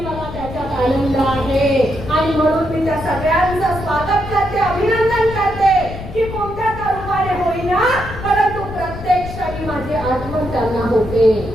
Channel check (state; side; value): noise; left; rumble, 11 dB below the sound